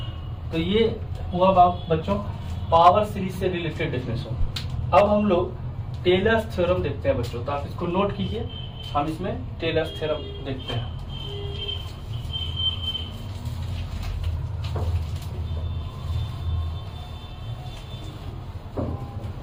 तो ये हुआ बच्चों पावर सीरीज से रिलेटेड डेफिनेशन। अब हम लोग टेलर्स थ्योरम देखते हैं बच्चों, तो आप इसको नोट कीजिए, हम इसमें टेलर्स थ्योरम देखते हैं।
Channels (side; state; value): both; identical; correlation 1.00